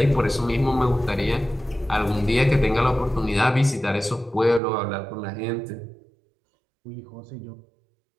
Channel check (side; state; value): left; drops out; at 4.6 s